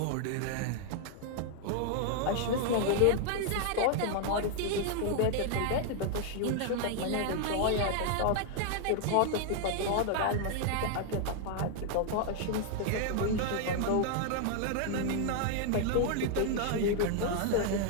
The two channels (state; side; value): different; both; correlation 0.00